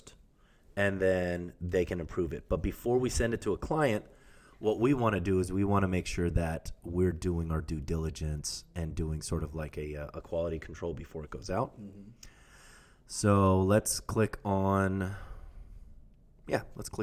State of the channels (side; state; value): both; identical; correlation 1.00